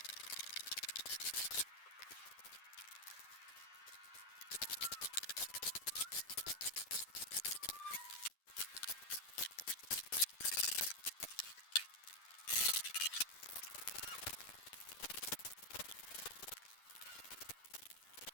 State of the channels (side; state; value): right; late; 10 ms